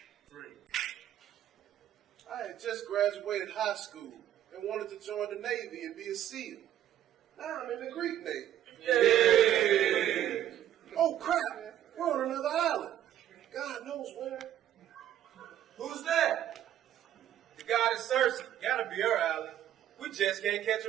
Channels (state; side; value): quieter; left; 11.6 dB